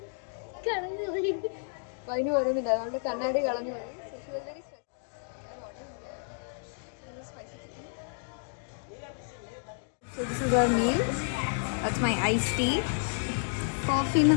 കളഞ്ഞു പോയി. വൈന് പറയുന്നില്ല, നമ്മളുടെ കണ്ണാടി കളഞ്ഞു പോയി. So this is our meal. That's my iced tea. കോഫിന്ന്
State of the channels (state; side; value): silent; right; digital silence